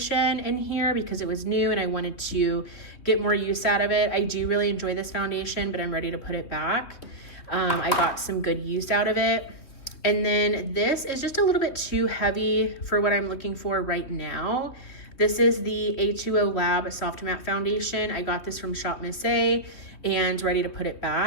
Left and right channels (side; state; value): right; late; 3.2 ms